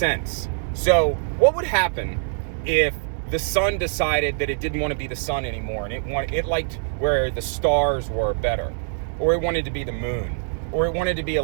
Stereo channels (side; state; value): left; silent; digital silence